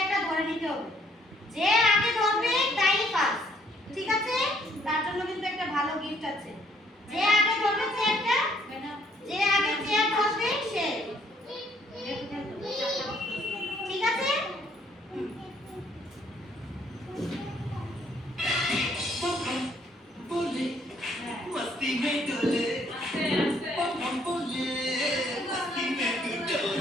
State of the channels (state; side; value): normal; both; correlation 0.66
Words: ধরে নিতে হবে। যে আগে ধরবে তাই ফার্স্ট, ঠিক আছে? তার জন্য কিন্তু একটা ভালো গিফট আছে। যে আগে ধরবে চেয়ারটা, যে আগে চেয়ার ধরবে সে, ঠিক আছে? मस्ती में डोले हम बोले मस्ती में डोले